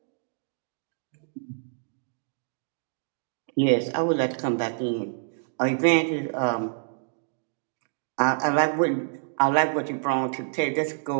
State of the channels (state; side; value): silent; left; digital silence